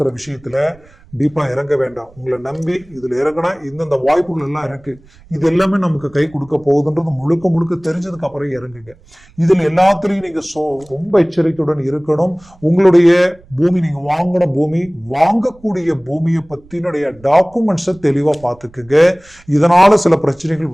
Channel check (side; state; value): right; noise; rumble, 27 dB below the sound